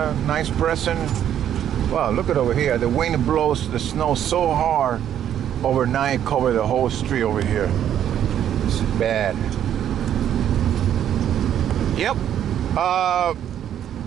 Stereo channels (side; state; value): left; quieter; 10.3 dB